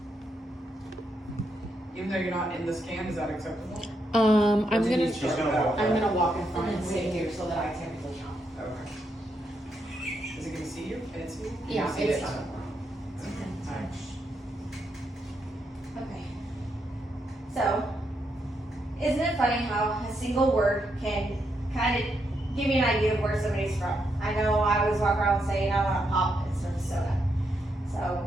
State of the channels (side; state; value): both; normal; correlation 0.80